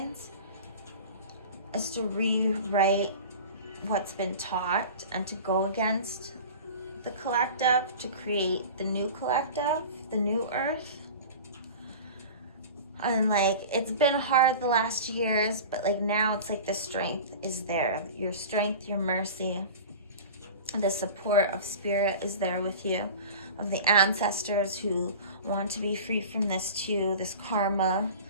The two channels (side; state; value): both; inverted; correlation -0.36